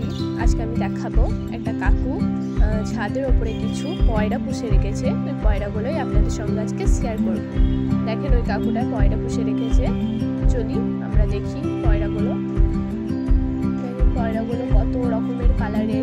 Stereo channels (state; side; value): identical; both; correlation 1.00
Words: আজকে আমি দেখাবো একটা কাকু ছাদের ওপরে কিছু পয়রা পুষে রেখেছে। ওই পয়রাগুলোই আপনাদের সঙ্গে আজকে শেয়ার করব। দেখেন ওই কাকুটা পয়রা পুষে রেখেছে। চলি আমরা দেখি পয়রাগুলো। পয়রাগুলো কত রকমের